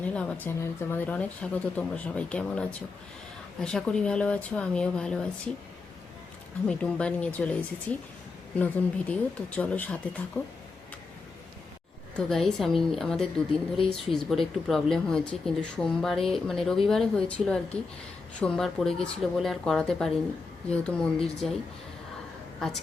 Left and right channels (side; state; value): right; quieter; 4.1 dB